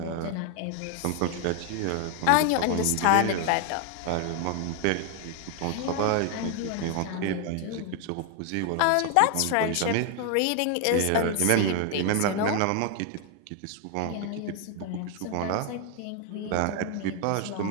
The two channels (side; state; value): both; different; correlation 0.00